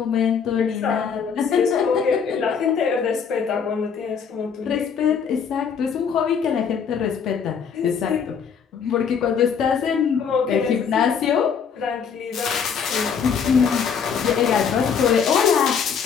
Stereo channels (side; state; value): right; quieter; 6.8 dB